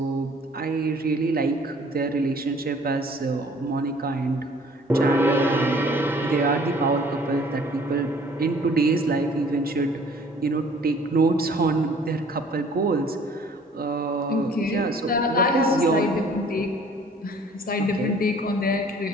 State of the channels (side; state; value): both; normal; correlation 0.54